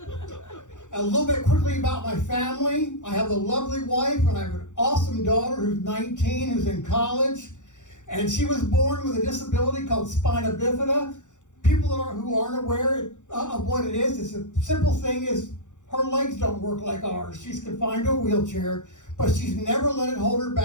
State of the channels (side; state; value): right; late; 0.85 ms